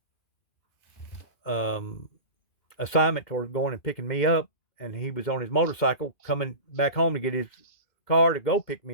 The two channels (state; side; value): late; right; 2.1 ms